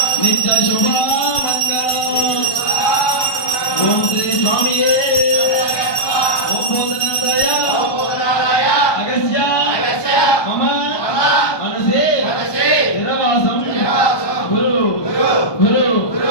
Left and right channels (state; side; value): late; right; 1.2 ms